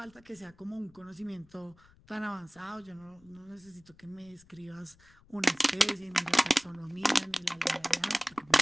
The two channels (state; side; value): noise; left; rumble, 28 dB below the sound